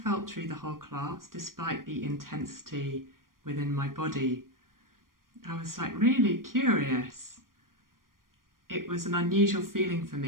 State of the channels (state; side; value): late; left; 0.91 ms